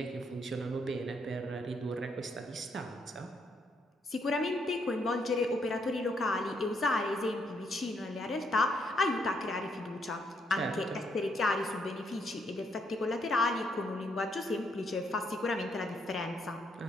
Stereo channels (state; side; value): normal; both; correlation 0.74